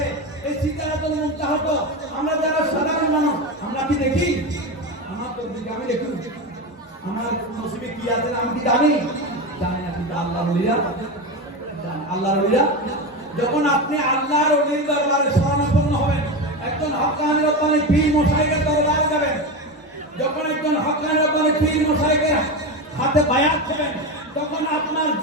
এই সিদ্ধারাতুল মুনতাহা তো আমরা যারা সাধারণ মানুষ, আমরা কি দেখি? আমার তকদির আমি দেখি, আমার নসিবে কি আছে আমি কি জানি? জানি না। কিন্তু আল্লাহর ওলিরা জানেন। আল্লাহর ওলিরা যখন আপনি আল্লাহর ওলির দরবারে শরণাপন্ন হবেন, একজন হক্কানি রব্বানি পীর মশাইয়ের দরবারে যাবেন, যখন একজন হক্কানি রব্বানি পীর মশাইয়ের হাতে বায়াত করবেন, তখন আপনার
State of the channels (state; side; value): normal; both; correlation 0.19